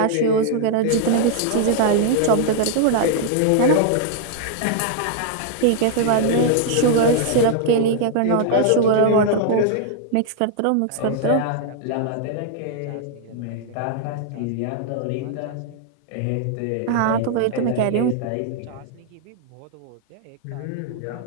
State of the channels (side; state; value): both; different; correlation 0.00